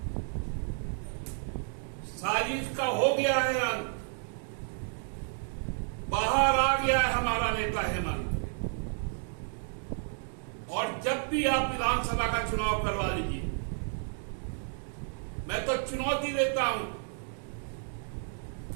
साजिश का हो गया है अंत, बाहर आ गया है हमारा नेता हेमंत। और जब भी आप विधानसभा का चुनाव करवा लीजिए, मैं तो चुनौती देता हूं,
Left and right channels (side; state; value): left; silent; 57 dB below the other